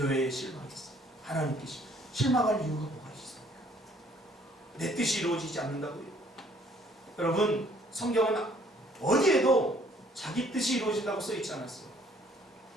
실망했어. 하나님께 실망할 이유가 뭐가 있습니까? 내 뜻이 이루어지지 않는다고요? 여러분, 성경은 어디에도 자기 뜻이 이루어진다고 써있지 않았어요.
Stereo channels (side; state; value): both; normal; correlation 0.61